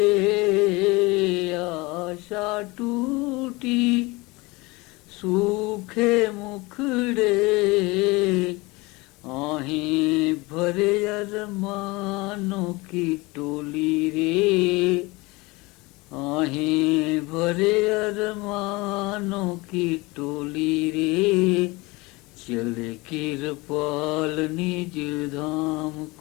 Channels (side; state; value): right; quieter; 23.7 dB